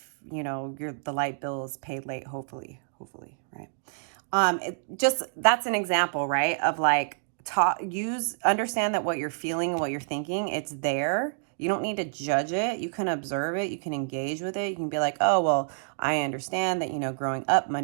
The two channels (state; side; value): silent; left; digital silence